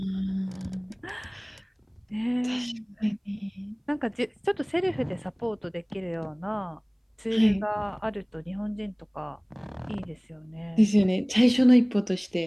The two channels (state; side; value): identical; both; correlation 1.00